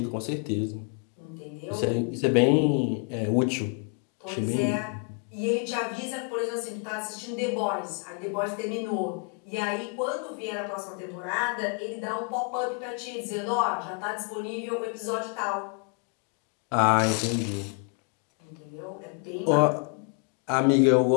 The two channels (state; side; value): quieter; right; 37.7 dB